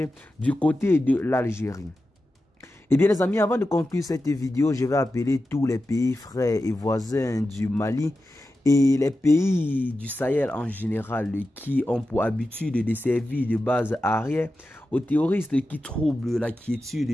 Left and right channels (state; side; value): normal; both; correlation 0.92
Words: du côté de l'Algérie. Eh bien les amis, avant de conclure cette vidéo, je vais appeler tous les pays frères et voisins du Mali et les pays du Sahel en général qui ont pour habitude de servir de base arrière aux terroristes qui troublent la